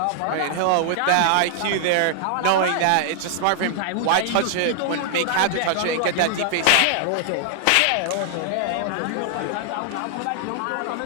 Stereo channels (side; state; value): both; different; correlation 0.00